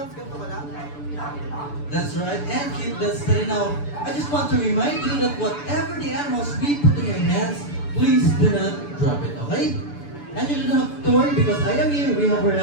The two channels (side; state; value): right; late; 6.9 ms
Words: ganito ka lang? That's right, and keep that steady. Now, I just want to remind you that whatever the animals we put in your hands, please do not drop it, okay? And you don't have to worry because I am here. We have our